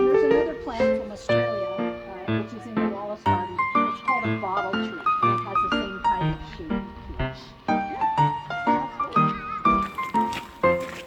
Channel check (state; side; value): identical; both; correlation 1.00